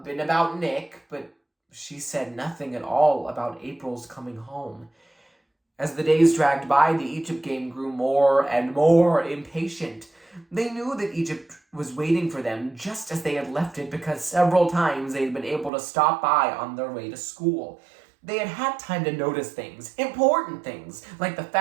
and about Nick, but she said nothing at all about April's coming home. As the days dragged by, the Egypt game grew more and more impatient. They knew that Egypt was waiting for them just as they had left it because several times they had been able to stop by on their way to school. They had had time to notice things, important things, like the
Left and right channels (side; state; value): left; drops out; at 15.7 s